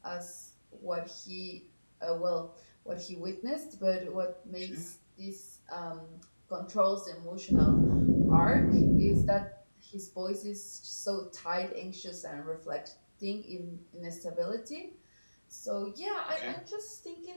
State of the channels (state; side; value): inverted; both; correlation -1.00